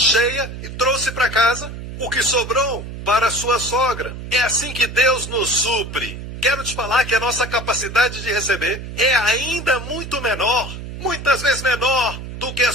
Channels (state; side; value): noise; right; hum, 9 dB below the sound